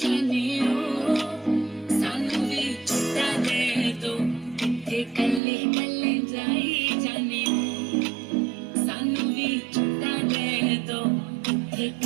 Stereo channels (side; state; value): left; drops out; at 5.4 s